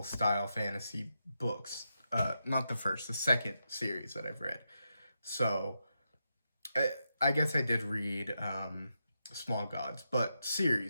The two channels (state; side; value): inverted; both; correlation -0.86